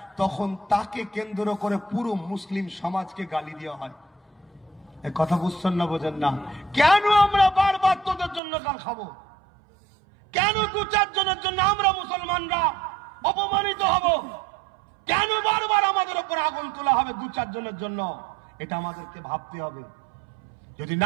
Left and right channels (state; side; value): drops out; left; at 8.4 s